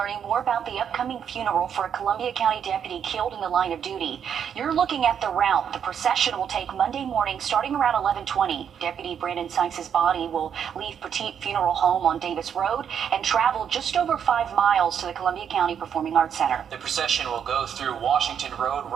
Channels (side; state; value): left; quieter; 8.1 dB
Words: more about the upcoming funeral for a Columbia County deputy killed in the line of duty. You're looking at the route. The procession will take Monday morning starting around 11:20. Deputy Brandon Sykes' body will leave Petite Funeral Home on Davis Road and travel just over 5 miles to the Columbia County Performing Arts Center. The procession will go through Washington Road,